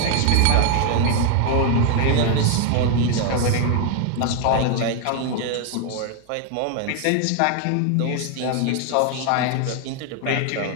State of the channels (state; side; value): different; both; correlation 0.01